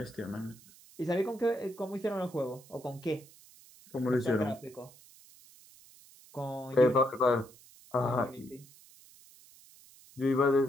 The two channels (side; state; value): right; noise; hiss, 23 dB below the sound